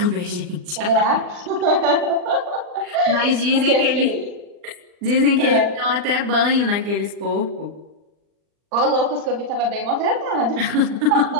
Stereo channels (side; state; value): left; late; 39 ms